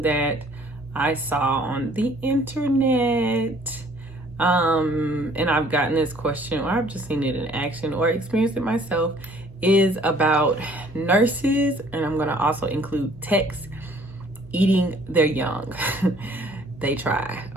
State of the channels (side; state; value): both; normal; correlation 0.57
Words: that I saw on the internet, and I've gotten this question, or I've just seen it in action or experienced it myself, is about nurses, and I'm going to also include techs, eating their young. They try,